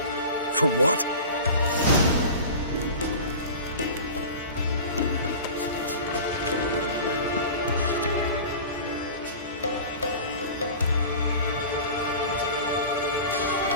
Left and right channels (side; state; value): both; inverted; correlation -0.36